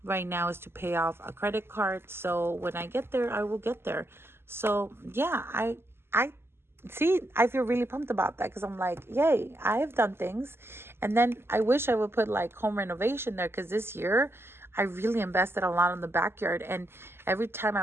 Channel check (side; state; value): left; late; 0.12 ms